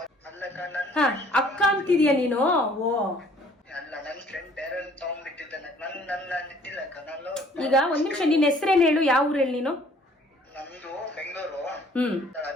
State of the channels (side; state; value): both; normal; correlation 0.57